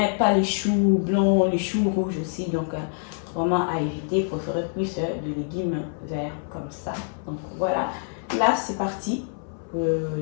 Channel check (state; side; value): silent; right; 61 dB below the other